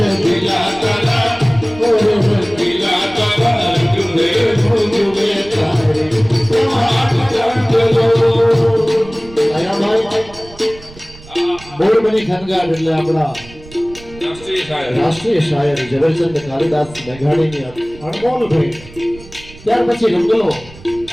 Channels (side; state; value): right; noise; rumble, 20 dB below the sound